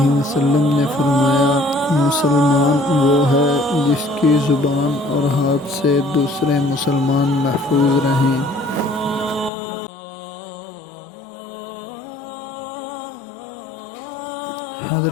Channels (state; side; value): drops out; right; at 9.5 s